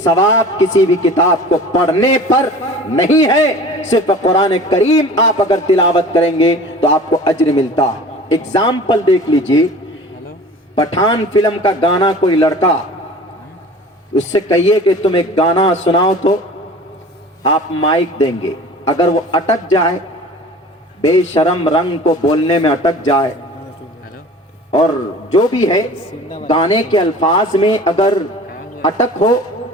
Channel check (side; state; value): both; normal; correlation 0.41